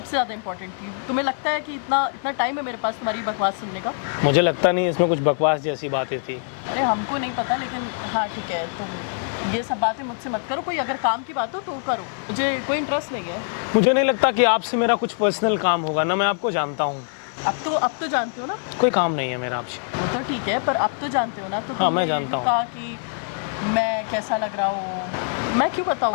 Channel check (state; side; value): silent; right; 59 dB below the other